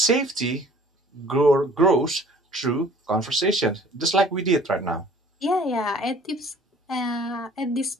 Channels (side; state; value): both; normal; correlation 0.53